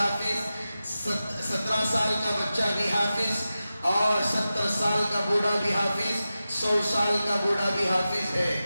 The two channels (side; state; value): both; inverted; correlation -0.93